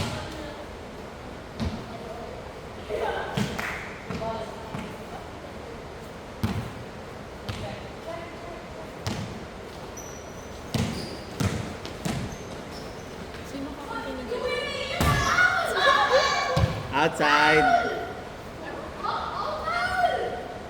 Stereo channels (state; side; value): identical; both; correlation 1.00